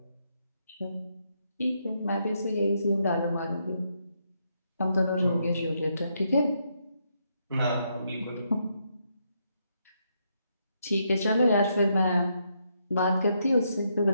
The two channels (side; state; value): both; inverted; correlation -0.78